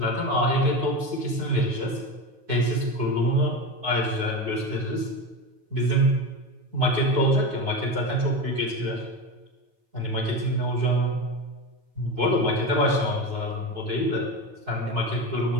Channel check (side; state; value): left; late; 9.3 ms